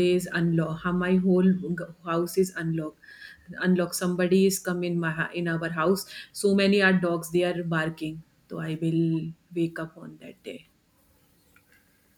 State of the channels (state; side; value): identical; both; correlation 1.00